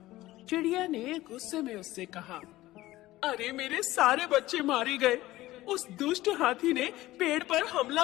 चिड़िया ने गुस्से में उससे कहा, अरे मेरे सारे बच्चे मारे गए। उस दुष्ट हाथी ने पेड़ पर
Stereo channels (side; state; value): right; quieter; 16.8 dB